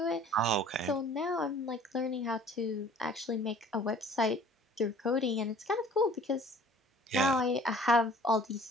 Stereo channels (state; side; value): normal; both; correlation 0.50